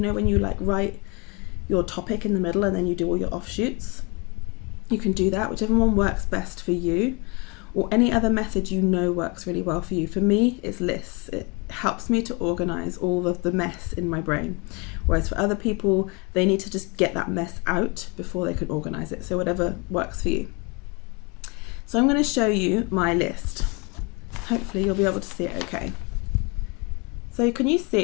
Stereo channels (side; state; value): right; quieter; 29.9 dB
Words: know when you like write your topic in the middle and then you do all your offshoots, you can do that, whichever one works best for you, or any other method you know works really well for you. For me, it's lists. It helps me to organize all of the mess in my brain. Whereas for other people, they need to just get that mess out before they can organize it. So whatever works for you. So I'm going to show you my list. Hopefully you'll be able to see it okay. So can you